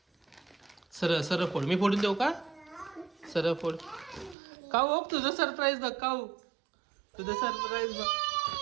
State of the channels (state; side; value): drops out; left; at 4.4 s